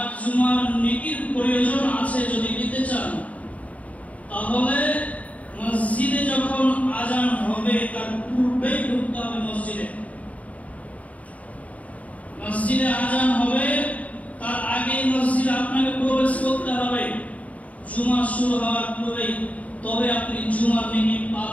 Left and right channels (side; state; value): right; late; 0.069 ms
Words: জুমার নেকির প্রয়োজন আছে যদি দিতে চান, তাহলে মসজিদে যখন আজান হবে তার পূর্বেই ঢুকতে হবে। মসজিদে আজান হবে তার আগে মসজিদে আপনাকে প্রবেশ করতে হবে জুমা শুরু হওয়ার পূর্বেই, তবে আপনি জুমার নেকি